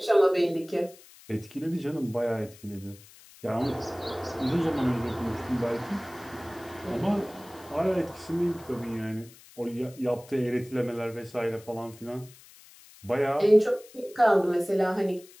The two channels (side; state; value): left; noise; hiss, 22 dB below the sound